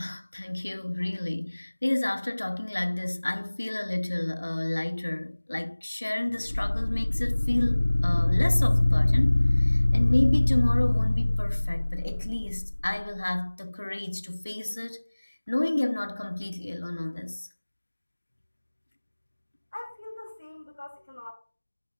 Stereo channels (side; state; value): both; inverted; correlation -1.00